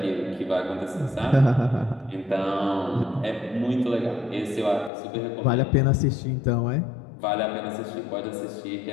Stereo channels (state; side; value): drops out; right; at 4.9 s